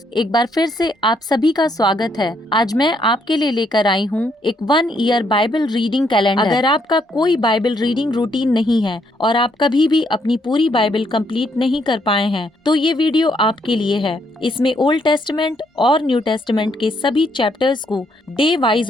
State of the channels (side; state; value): both; normal; correlation 0.73